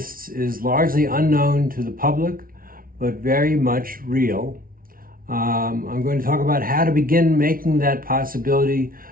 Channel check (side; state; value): left; late; 0.42 ms